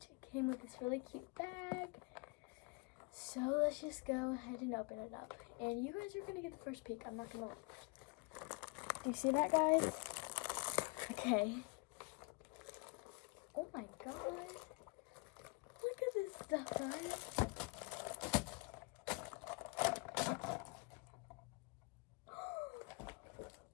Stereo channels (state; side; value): quieter; right; 29.1 dB